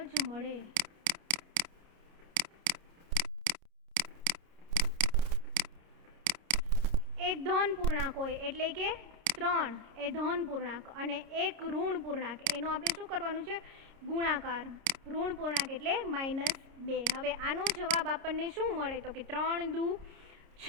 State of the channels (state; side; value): late; left; 30 ms